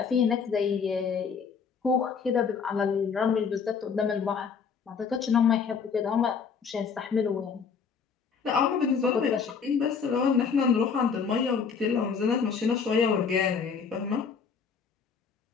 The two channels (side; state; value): right; quieter; 6.0 dB